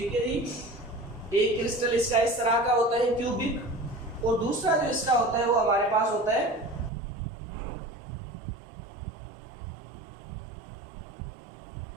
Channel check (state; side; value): drops out; left; at 6.9 s